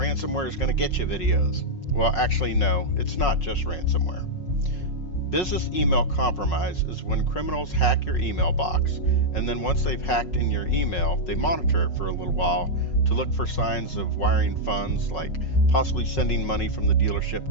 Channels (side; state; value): right; late; 5.5 ms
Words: is going to get you videos. Well, actually no, it's not just ransomware. Business email compromise is when criminals hack your email box, and then once they've hacked in your email, they monitor it for a little while to look for signs of wiring funds, like possibly sending money from the dealership